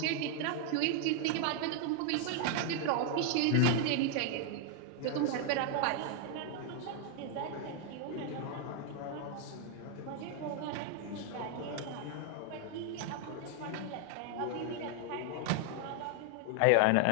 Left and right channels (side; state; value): both; different; correlation 0.00